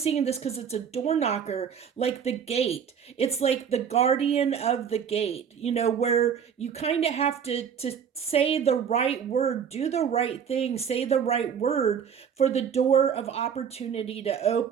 this because it's a door knocker, like the gate. It's like the guardian of the gate, where you kind of have to say the right word, do the right thing, say the right word for the door of opportunity to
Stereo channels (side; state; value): left; quieter; 7.6 dB